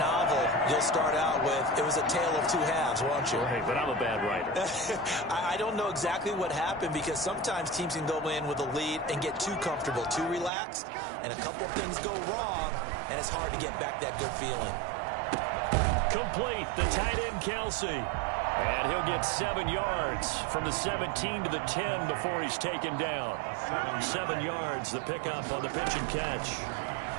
you'll start out with, it was a tale of two halves, won't you? Right, but I'm a bad writer. I don't know exactly what happened because sometimes teams can go in with a lead and get too comfortable, too relaxed, and a couple things go wrong, and it's hard to get back that good feeling. Complete, the tight end Kelce. And he'll get 7 yards from the 17 to the 10 before he's taken down. 7 yards, the pickup on the pitch and catch.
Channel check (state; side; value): drops out; left; at 10.5 s